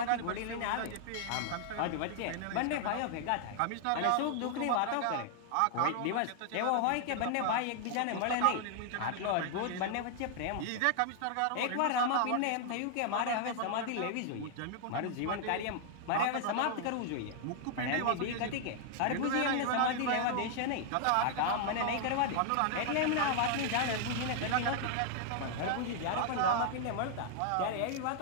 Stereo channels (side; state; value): both; different; correlation 0.00